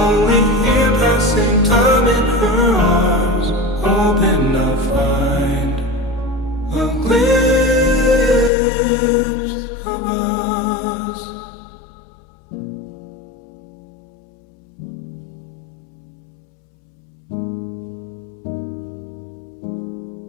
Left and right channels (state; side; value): drops out; right; at 8.5 s